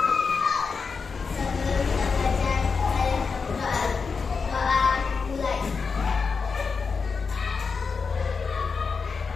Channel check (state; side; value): quieter; right; 5.1 dB